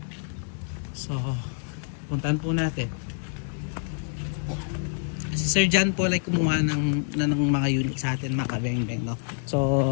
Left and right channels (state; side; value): silent; right; digital silence